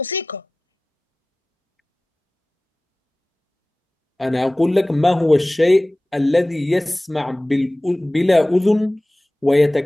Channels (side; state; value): both; normal; correlation 0.98